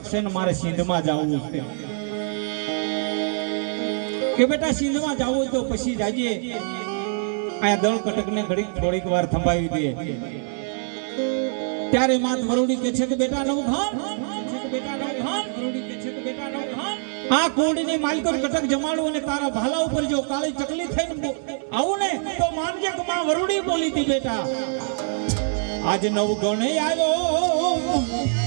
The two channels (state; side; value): silent; left; digital silence